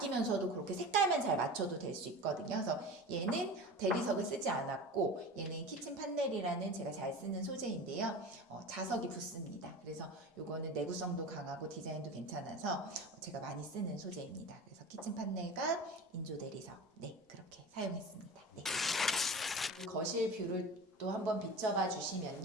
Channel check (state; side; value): normal; both; correlation 0.33